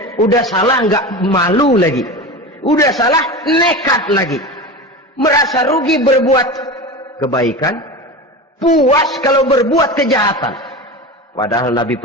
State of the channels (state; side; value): normal; both; correlation 0.27